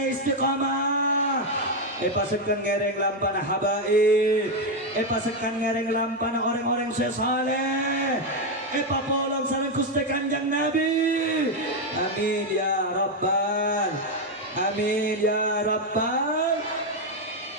istiqamah, epa sekan ngereng lampana habaib, epa sekan ngereng lampana orang-orang saleh. Epa polong sareng Gusti Kanjeng Nabi. Amin ya Rabbal. Amin ya Rabbal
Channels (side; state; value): both; normal; correlation 0.05